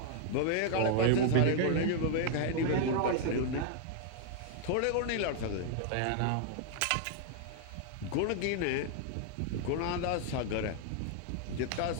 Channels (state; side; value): different; both; correlation 0.00